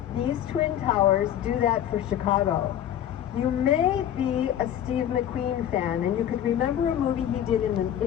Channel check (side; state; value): right; quieter; 10.7 dB